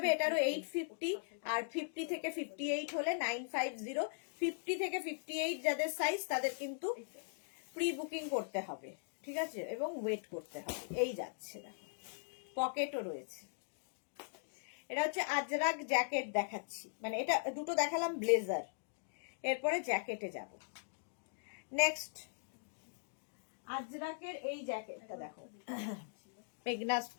এটারও 850, আর 50 থেকে 58 হলে 950। 50 থেকে 58 যাদের সাইজ তাদের কিন্তু প্রি বুকিং করতে হবে, ঠিক আছে, এবং ওয়েট করতে হবে। এই যাচ্ছে, দেখো পকেটও রয়েছে। এটা হচ্ছে আজরাক জ্যাকেট দেখাচ্ছি, মানে এটা দুটো দেখালাম ব্লেজার, এরপরে জ্যাকেটে যাব। নেক্সট আজরাকের এই জ্যাকেটটা দেখো, মেঘনা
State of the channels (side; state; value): right; silent; digital silence